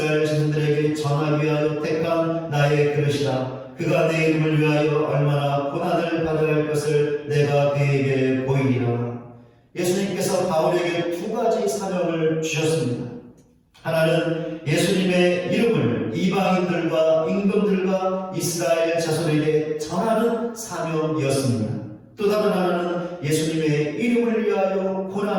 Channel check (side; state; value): both; identical; correlation 1.00